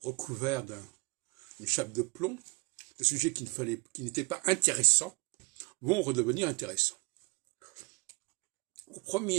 recouvert d'une chape de plomb, des sujets qui n'étaient pas intéressants, vont redevenir intéressants. Au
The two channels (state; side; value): quieter; left; 28.4 dB